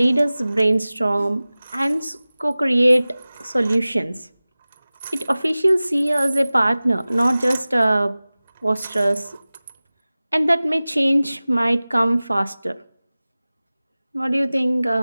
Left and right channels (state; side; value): inverted; both; correlation -0.98